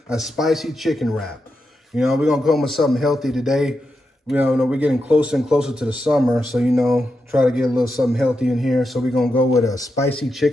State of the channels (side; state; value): both; normal; correlation 0.86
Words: a spicy chicken wrap. You know, we're going to come with something healthy today. We're getting closer and closer to the summer, so, try to get a little something healthy in here. So we're going to go with a spicy